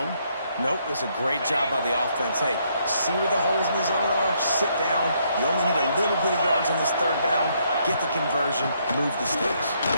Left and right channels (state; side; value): inverted; both; correlation -0.72